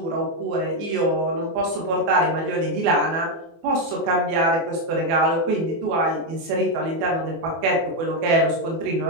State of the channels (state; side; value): late; left; 24 ms